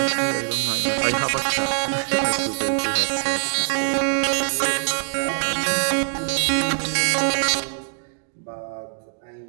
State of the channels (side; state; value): left; silent; 62 dB below the other